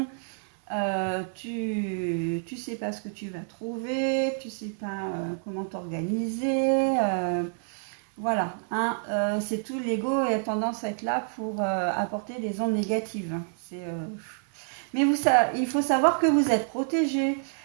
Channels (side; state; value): left; silent; digital silence